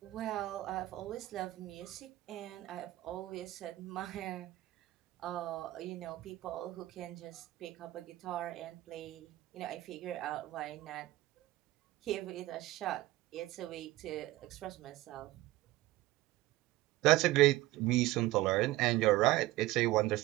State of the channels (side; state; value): left; quieter; 17.6 dB